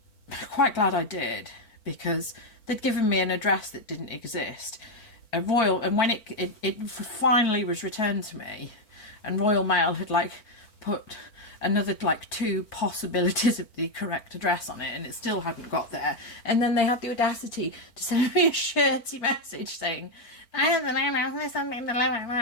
quite glad I did, because they'd given me an address that didn't exist. And when it finally was returned to me, and Royal Mail had, like, put another, like, 2 possibilities of the correct address on it, and it still hadn't got there. And then they had the audacity to send me a shirty message saying, I don't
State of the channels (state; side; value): late; right; 4.4 ms